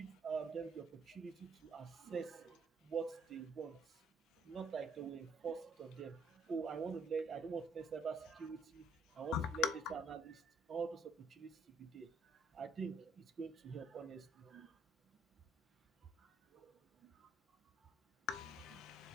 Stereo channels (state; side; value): normal; both; correlation 0.64